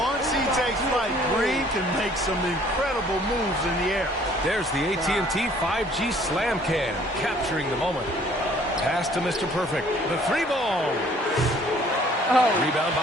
he takes flight, Green can make some incredible moves in the air. There's the AT&T 5G Slam Can, capturing the moment. Pass to Mr. Perfect. The three ball. Rebound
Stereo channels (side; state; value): both; normal; correlation 0.57